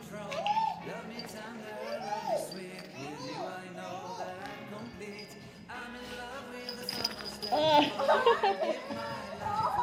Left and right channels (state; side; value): identical; both; correlation 1.00